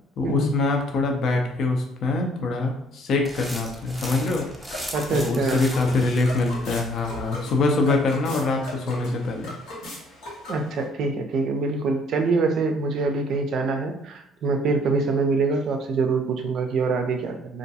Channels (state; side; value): normal; both; correlation 0.61